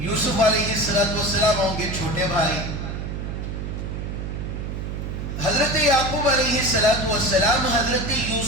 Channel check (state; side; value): noise; right; hum, 5 dB below the sound